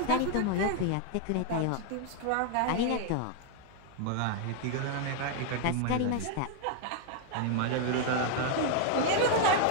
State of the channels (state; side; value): different; both; correlation 0.00